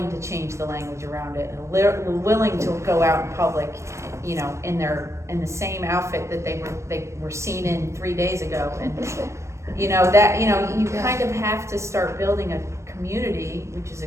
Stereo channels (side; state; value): left; late; 0.14 ms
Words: to change the language around it, and willing to go out in public, in the same outfit that they were seen in 3 days ago, and you kind of have to start building a community, which is a